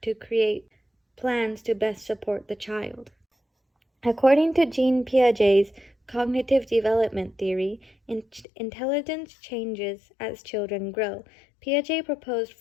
to create plans to best support the child. According to Jean Piaget's cognitive development theory, intelligence changes as children grow. Piaget proposed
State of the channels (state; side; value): drops out; right; at 8.5 s